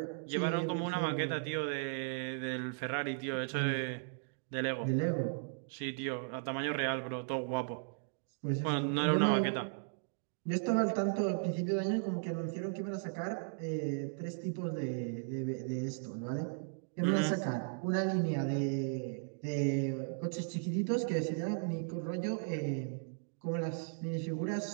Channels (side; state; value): left; silent; digital silence